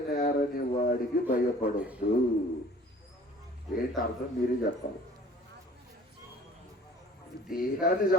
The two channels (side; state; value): both; normal; correlation 0.50